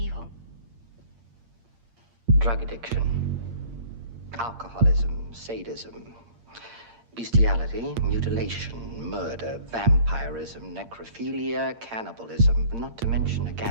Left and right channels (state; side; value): late; left; 8.7 ms